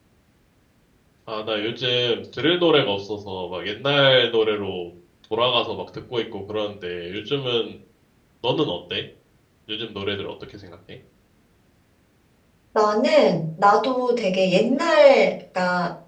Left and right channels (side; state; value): both; identical; correlation 1.00